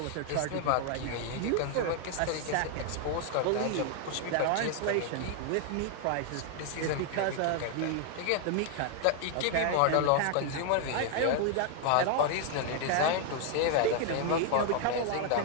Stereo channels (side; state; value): both; different; correlation 0.00